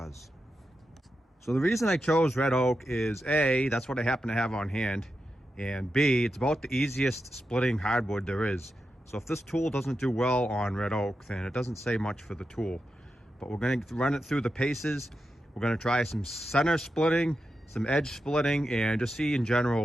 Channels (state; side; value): normal; both; correlation 0.89